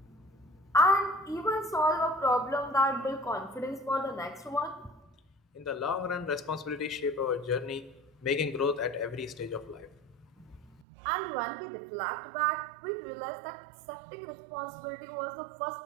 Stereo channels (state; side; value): drops out; left; at 10.8 s